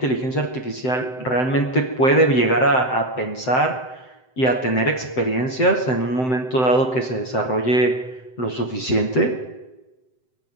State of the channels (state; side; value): late; right; 7.8 ms